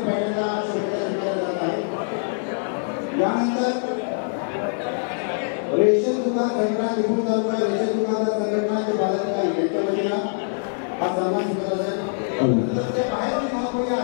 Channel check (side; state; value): right; silent; digital silence